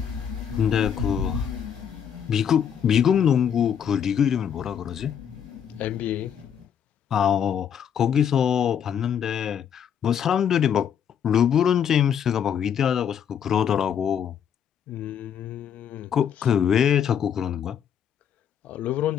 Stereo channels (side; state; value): right; quieter; 8.4 dB